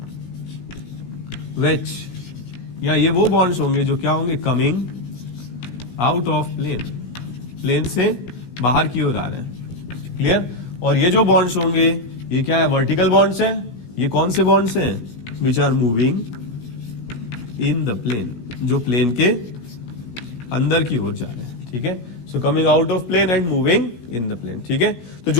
वेज, या ये वो बॉन्ड्स होंगे जो क्या होंगे, coming out of plane, plane से बाहर की ओर आ रहे हैं। क्लियर? और ये जो बॉन्ड्स होंगे ये क्या है, वर्टिकल बॉन्ड्स हैं। ये कौन से बॉन्ड्स हैं, which are moving in the plane, जो प्लेन के अंदर की ओर जा रहे हैं। ठीक है, so coming out of plane and moving in the plane. ठीक है, तो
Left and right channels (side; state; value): right; late; 17 ms